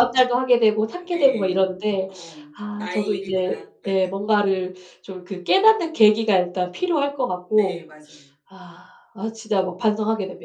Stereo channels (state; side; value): identical; both; correlation 1.00